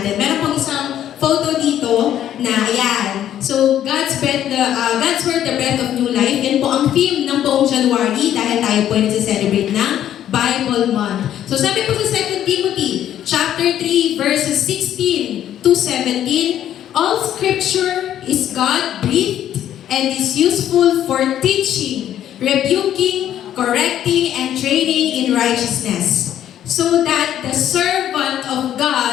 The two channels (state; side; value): quieter; right; 11.1 dB